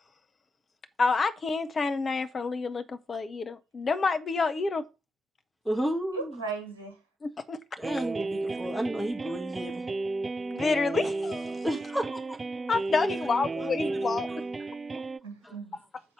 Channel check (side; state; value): both; normal; correlation 0.87